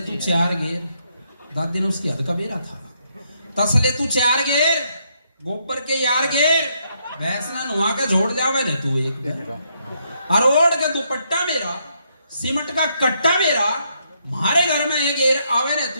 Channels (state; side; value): inverted; both; correlation -0.75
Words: तू 4 गेर। दादी ने उसकी हद का बेरा था, तसले तू 4 गेर, गोबर के यार गेर, भैंस ना नुआ के जोड़ जावे ने तू एक, और ओढ़ के दुपट्टा मेरा, सीमेंट का कट्टा मेरा, हमारे घर में एक गेर आवे ने